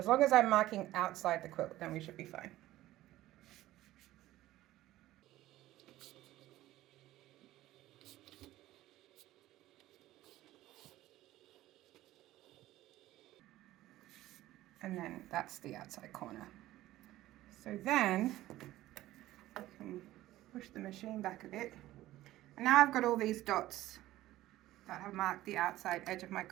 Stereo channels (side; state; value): left; quieter; 15.5 dB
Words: long as I'm marking outside the quilt, then we should be fine. And then that's the outside corner. So then I can push the machine back a bit. And now I've got all these dots that have marked the outside edge of my